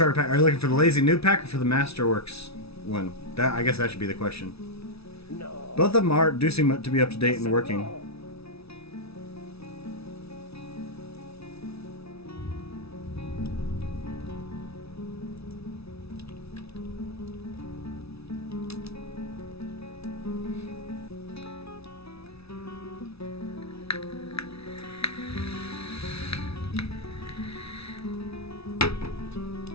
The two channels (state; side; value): late; right; 0.78 ms